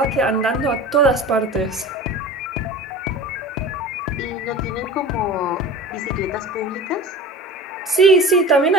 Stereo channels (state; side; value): normal; both; correlation 0.36